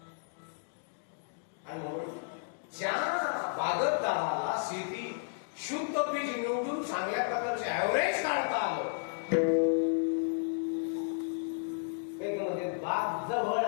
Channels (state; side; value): silent; right; digital silence